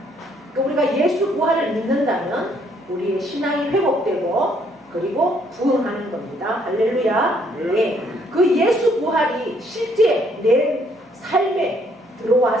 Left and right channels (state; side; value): normal; both; correlation 0.67